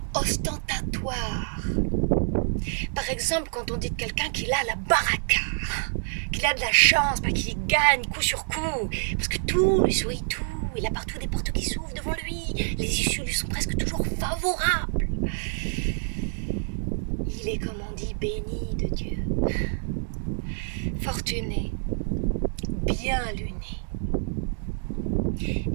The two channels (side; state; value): left; silent; 60 dB below the other